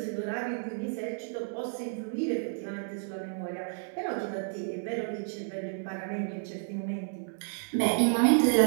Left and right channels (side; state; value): left; silent; digital silence